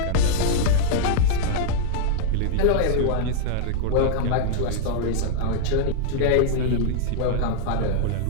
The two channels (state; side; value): different; both; correlation -0.01